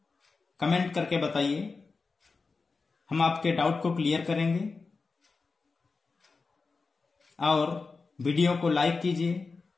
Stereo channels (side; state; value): right; quieter; 4.3 dB